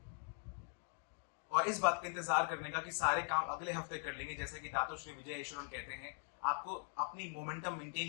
और इस बात का इंतजार करने का कि सारे काम अगले हफ्ते कर लेंगे। जैसे कि दातो श्री विजय ईश्वरन कहते हैं, आपको अपनी मोमेंटम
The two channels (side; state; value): right; silent; 50 dB below the other